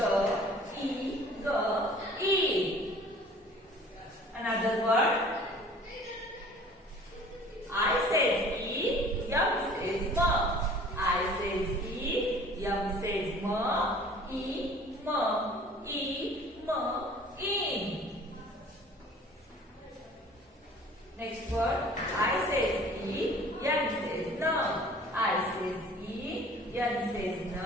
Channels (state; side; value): normal; both; correlation 0.49